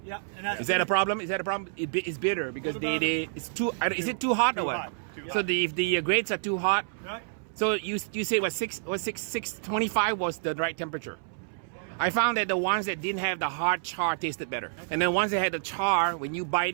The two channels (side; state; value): left; silent; 59 dB below the other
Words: Yeah. And Is that a problem? It's bitter because it's too. Is it too hot or what? So if the grades are too hot. Right. So you say what 625 was the right temperature. I found that the ones that didn't have the hard char tasted better, and then ones that had the char, when you